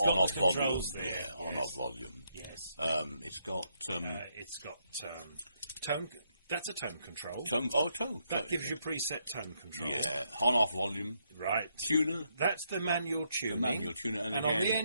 volume. On-off volume. Yes. It's got tone. That's a tone control. Tone. That gives you preset tone control. Yeah. On-off volume. Right. Tuner. That's the manual tuning. The manual tuner. And again, on the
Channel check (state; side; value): inverted; both; correlation -0.77